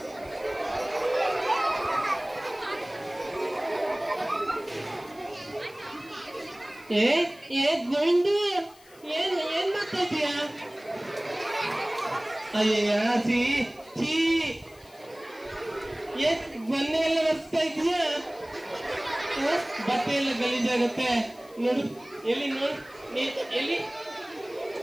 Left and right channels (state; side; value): noise; left; hiss, 26 dB below the sound